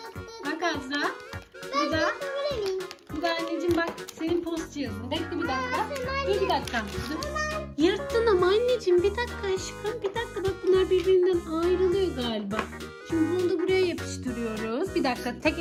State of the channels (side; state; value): both; identical; correlation 1.00